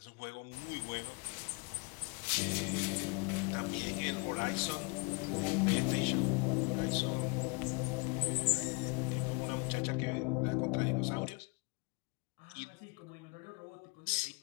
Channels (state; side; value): quieter; right; 32.1 dB